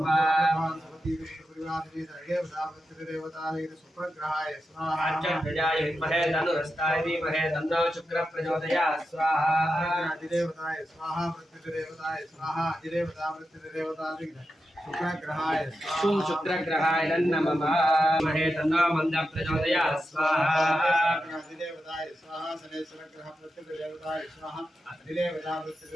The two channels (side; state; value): both; normal; correlation 0.89